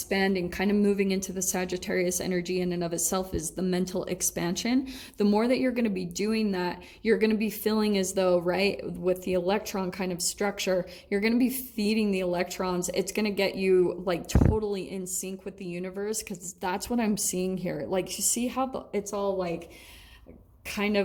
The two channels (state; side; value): identical; both; correlation 1.00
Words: kind of moving into the Sagittarius energy in and of itself is the mental expansion. The more that you're going to be doing that, you're going to be feeling as though, right, with the electron kind of structure, you're going to be feeding the electrons. It's going to get you like totally in sync with the universe, because that's what I'm seeing here. Like, you see how it's all like kind